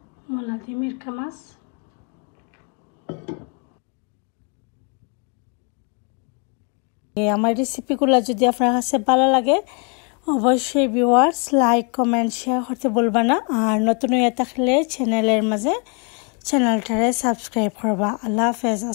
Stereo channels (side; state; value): right; quieter; 35.7 dB